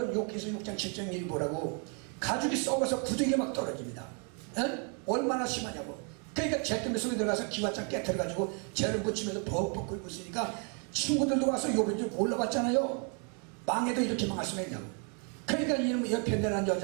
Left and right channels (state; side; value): quieter; left; 39.1 dB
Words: 욕해서 6장 7장 1 보라고 가죽이 썩어서 부득이 막 떨어집니다. 얼마나 심하냐고. 그러니까 잿더미 속에 들어가서 기와장 깨트려가지고 죄를 묻히면서 벅벅 끓고 있으니까 친구들도 와서 요번 좀 올라봤잖아요. 망해도 이렇게 망할 수가 있냐고. 그러니까 이놈의 옆에 내란